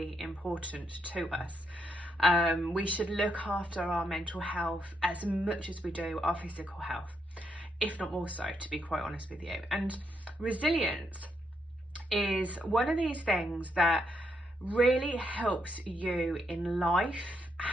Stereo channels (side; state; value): both; normal; correlation 0.78